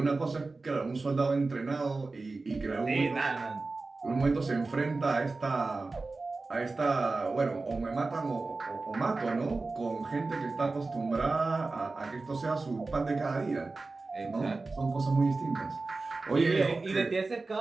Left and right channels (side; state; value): left; quieter; 3.6 dB